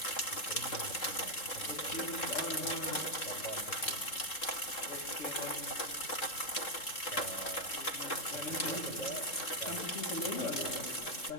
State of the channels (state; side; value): late; right; 3.7 ms